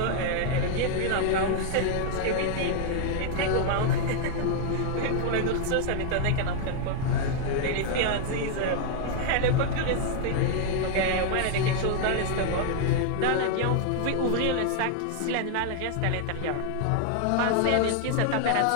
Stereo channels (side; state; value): both; different; correlation 0.00